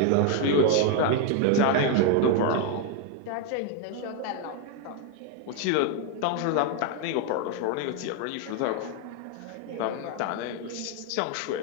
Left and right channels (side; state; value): both; different; correlation 0.01